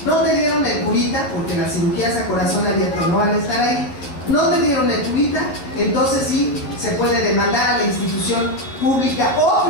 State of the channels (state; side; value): late; right; 11 ms